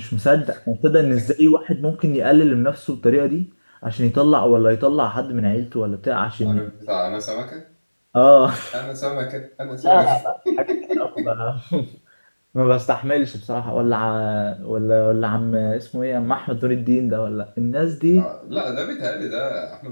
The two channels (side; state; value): both; inverted; correlation -1.00